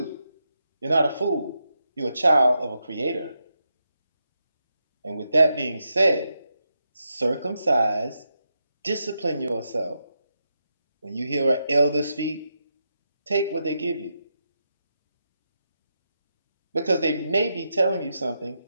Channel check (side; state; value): both; inverted; correlation -0.85